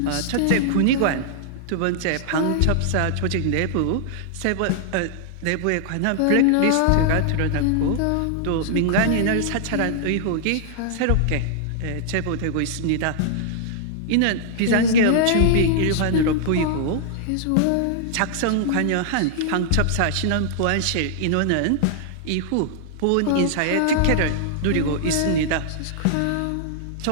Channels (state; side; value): different; both; correlation -0.01